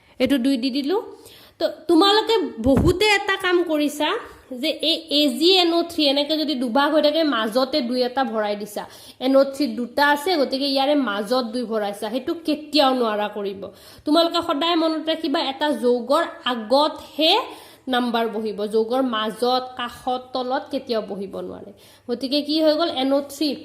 এটো 2 দি দিলু তো তোমালোকে বহুতে এটা কাম কৰিছা যে এই AgNO3 এনেকে যদি দুভাগ হৈ থাকে মাজতে 2 এটা ভৰাই দিছা NO3 দুটা আছে গতিকে ইয়াৰে মাজত 2 ভৰাইছা হেতু কেতিয়াও নোৱাৰা কৰিব তোমালোকে সদায় মনত ৰাখিবা এটা যৌগৰ আগত হে নাম্বাৰ বহিব যৌগৰ মাজত কাখত তলত কেতিয়াও বহিব নোৱাৰে গতিকে কি হৈ গল NO3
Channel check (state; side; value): identical; both; correlation 1.00